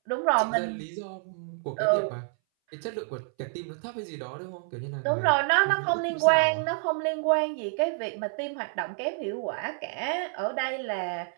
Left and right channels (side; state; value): left; silent; 59 dB below the other